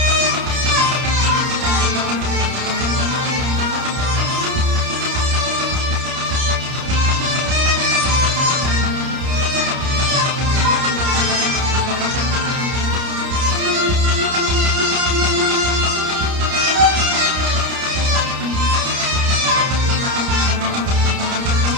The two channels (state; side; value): late; left; 30 ms